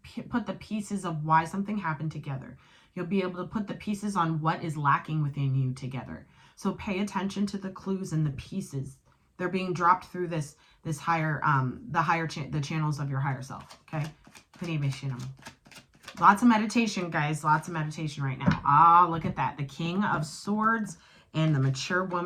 put the pieces of why something happened together. You'll be able to put the pieces on what is lacking within you together. So pay attention to the clues and the pieces. They're being dropped through this higher, the channels of your higher self. Okay. Lots of meditation, guys. Lots of meditation right now. Ah, look at that. The King of Swords and the mature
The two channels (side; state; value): both; identical; correlation 1.00